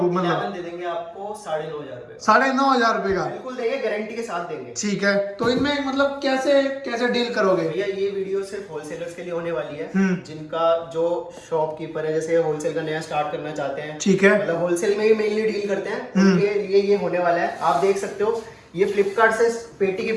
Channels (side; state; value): both; identical; correlation 1.00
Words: को? मतलब दे देंगे आपको 9,500 रुपए। 9,500 रुपए का? बिल्कुल देंगे, गारंटी के साथ देंगे। ठीक है। तो इनमें मतलब कैसे कैसे डील करोगे? भैया ये वीडियो सिर्फ होलसेलर्स के लिए होने वाली है, जिनका जो शॉपकीपर है, जैसे होलसेल का नया स्टार्ट करना चाहते हैं। ठीक है। मतलब होलसेल में ही मेनली डील करते हैं, उनके लिए ये होने वाला है। आप देख सकते हो, ये फ्लिपकार्ट से पेटी की